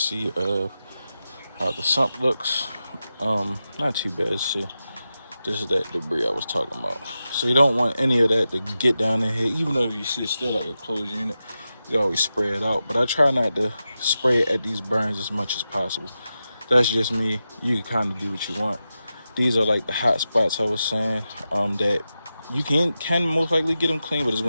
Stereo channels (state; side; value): inverted; both; correlation -0.91